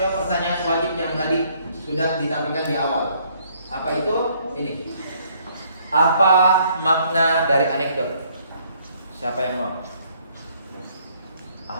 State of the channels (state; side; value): inverted; both; correlation -0.65